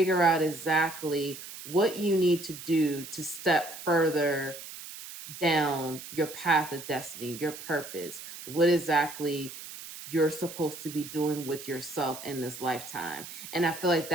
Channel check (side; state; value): right; noise; hiss, 12 dB below the sound